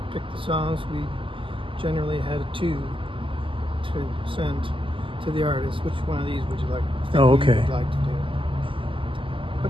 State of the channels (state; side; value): late; left; 0.25 ms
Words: picked the songs. We generally had 2 to send to the artist. Which one of these would you like? Oh, okay. Would like to do?